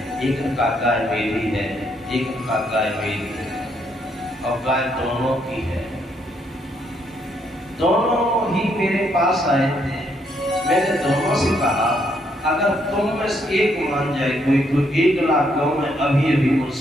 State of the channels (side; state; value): both; normal; correlation 0.73